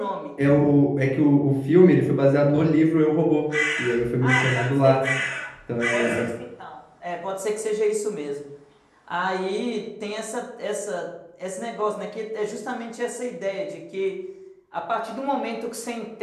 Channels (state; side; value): identical; both; correlation 1.00